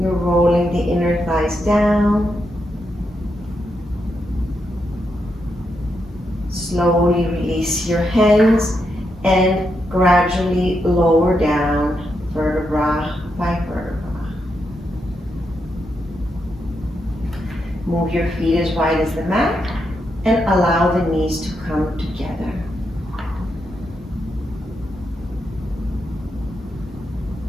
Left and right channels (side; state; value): both; normal; correlation 0.83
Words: rolling the inner thighs down. Slowly release your hands and gradually lower down vertebra by vertebra. Move your feet as wide as the mat and allow the knees to come together.